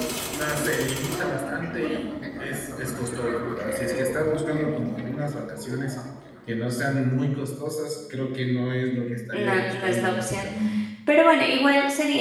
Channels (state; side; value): identical; both; correlation 1.00